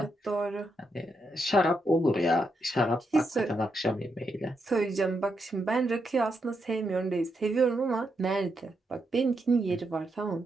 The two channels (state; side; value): normal; both; correlation 0.82